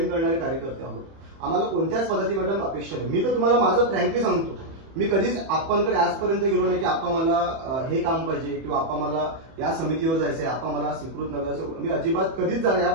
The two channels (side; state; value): left; late; 31 ms